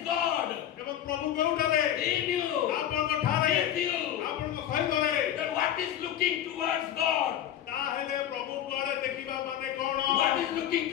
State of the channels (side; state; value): right; quieter; 11.0 dB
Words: God ଏବଂ ପ୍ରଭୁ କେଉଁଠାରେ in you, ଆପଣଙ୍କ ଠାରେ with you. ଆପଣଙ୍କ ସହିତରେ Then what is looking towards God? ତାହେଲେ ପ୍ରଭୁ କୁଆଡ଼େ ଦେଖିବା ମାନେ କଣ What is looking